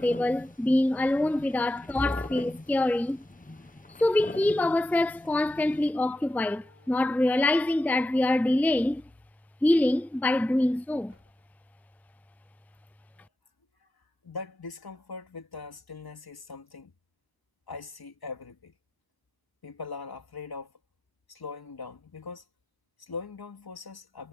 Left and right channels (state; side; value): normal; both; correlation 0.90